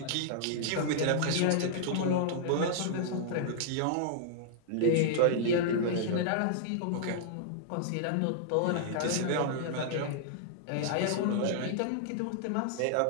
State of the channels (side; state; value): both; different; correlation -0.01